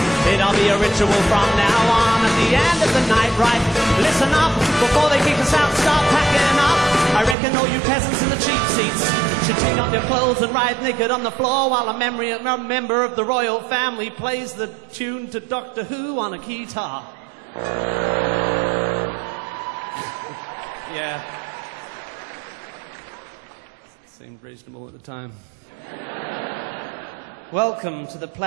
It'll be a ritual from now on. At the end of the night, right? Listen up, before they kick us out, start packing up. I reckon all you peasants in the cheap seats should take off your clothes and ride naked on the floor while a member of the royal family plays the tune to Doctor Who on a guitar. Yeah. Seemed reasonable at the time. Welcome to the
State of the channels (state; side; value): drops out; left; at 7.4 s